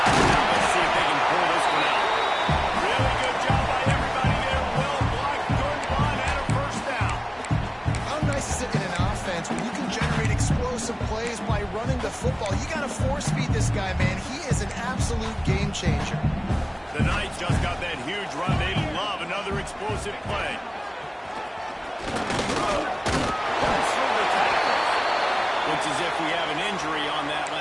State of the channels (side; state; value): both; identical; correlation 1.00